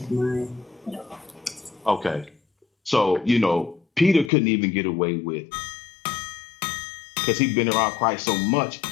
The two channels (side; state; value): right; drops out; at 4.3 s